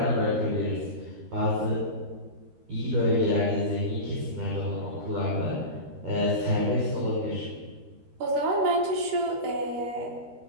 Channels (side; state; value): left; late; 13 ms